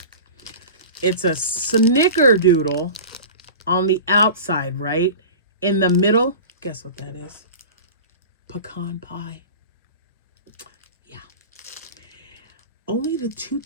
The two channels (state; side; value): inverted; both; correlation -0.35